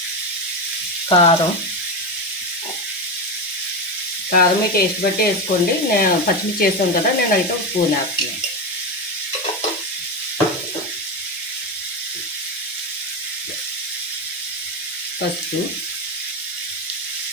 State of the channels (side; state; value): both; normal; correlation 0.15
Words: కారం మీ టేస్ట్ బట్టి వేసుకోండి. నేను పచ్చిమిర్చి వేసాను కదా, నేనైతే ఒక స్పూన్ వేస్తున్నాను. పసుపు,